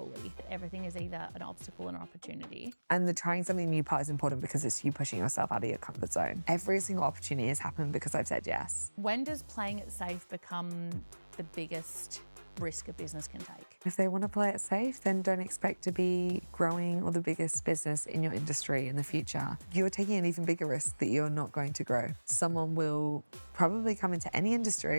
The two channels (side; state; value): both; inverted; correlation -1.00